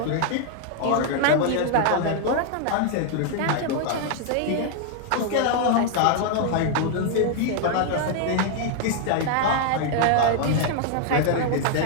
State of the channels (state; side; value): different; both; correlation 0.00